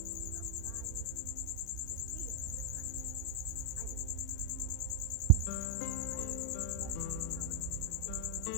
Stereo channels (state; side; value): different; both; correlation 0.00